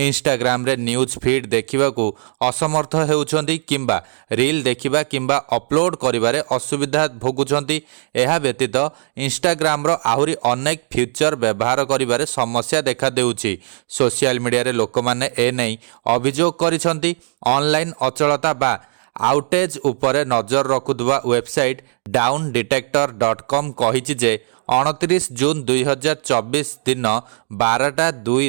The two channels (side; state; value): left; silent; digital silence